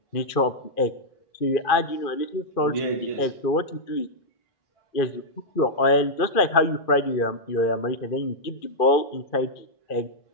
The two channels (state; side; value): late; right; 2.4 ms